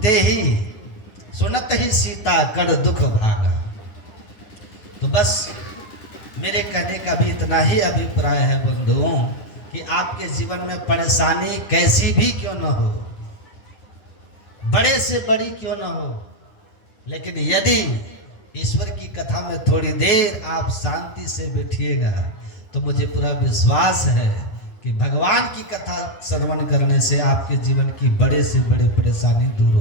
ही सुनत ही सीता कर दुख भागा। तो बस मेरे कहने का भी इतना ही अभिप्राय है बंधुओं, कि आपके जीवन में परेशानी कैसी भी क्यों न हो, बड़े से बड़ी क्यों न हो, लेकिन यदि ईश्वर की कथा में थोड़ी देर आप शांति से बैठिएगा तो मुझे पूरा विश्वास है कि भगवान की कथा श्रवण करने से आपके जीवन की बड़े से बड़ी परेशानी दूर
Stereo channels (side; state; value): right; late; 9.8 ms